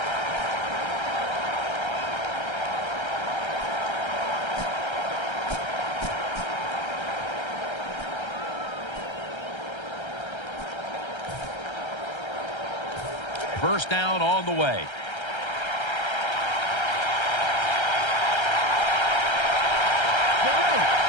First down on the way.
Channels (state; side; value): late; right; 1.3 ms